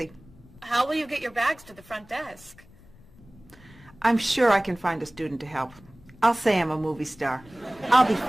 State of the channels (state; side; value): noise; left; rumble, 24 dB below the sound